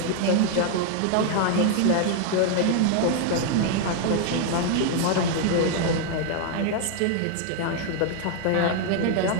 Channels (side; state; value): both; different; correlation 0.00